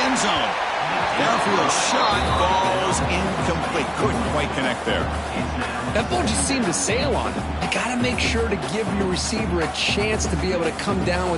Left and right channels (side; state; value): both; identical; correlation 1.00